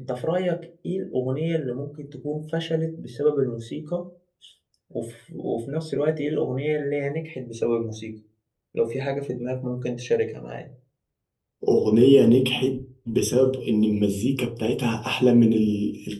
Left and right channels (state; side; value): identical; both; correlation 1.00